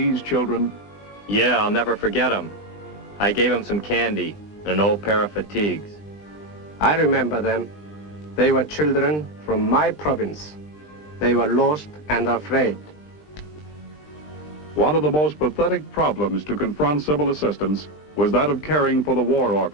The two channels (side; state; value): right; late; 20 ms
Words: children? Yeah, I'll never forget them. I gave them some candy and an old pair of fatigues. I remember them. They were children from my province. They were lost and afraid. One of the most pathetic problems to confront civil assistance was that of caring for the war